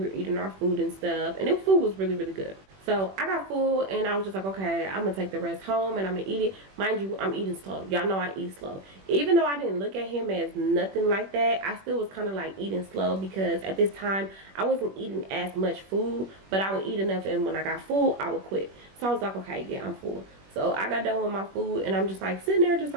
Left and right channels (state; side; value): late; left; 21 ms